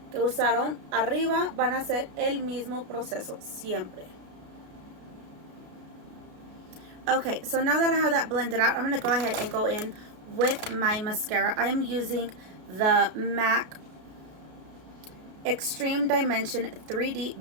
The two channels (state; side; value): late; left; 33 ms